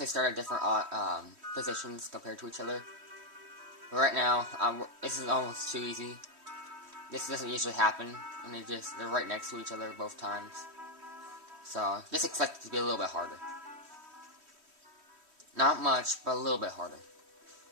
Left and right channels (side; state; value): left; late; 3.1 ms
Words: start at different positions compared to each other. But right now, this is almost too easy. This doesn't usually happen, and they're right next to each other both times. So, just expect it to be a little bit harder. Not much, but a little bit harder.